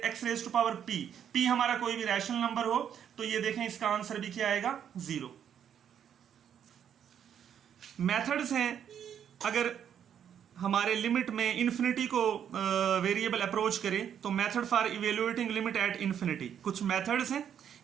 raise to power p हमारा कोई भी रैशनल नंबर हो, तो ये देखें इसका आंसर भी क्या आएगा 0। मेथड्स हैं अगर हमारे लिमिट में इन्फिनिटी को वेरिएबल अप्रोच करें तो method for evaluating limit at infinity, कुछ मेथड्स हैं,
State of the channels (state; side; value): quieter; left; 8.9 dB